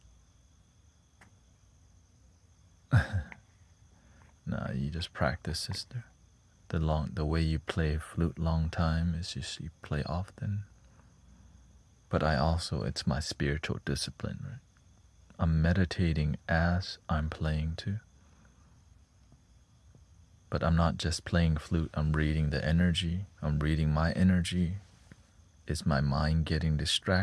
nah, you just practice, sister. The way you play flute long time is just you play often. But it's my spiritual discipline, right? I'm meditating as I'm playing too. But I'm not just playing flute, I'm reading the energy. I'm reading my energy. Is my mind getting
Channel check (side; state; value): both; identical; correlation 1.00